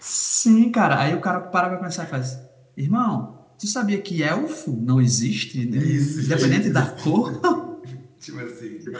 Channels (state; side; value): identical; both; correlation 1.00